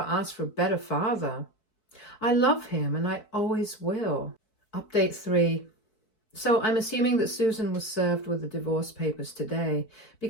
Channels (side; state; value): right; late; 4.6 ms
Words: for a better father. I love him and I always will. Update 3. So I'm assuming that Susan was served with the divorce papers today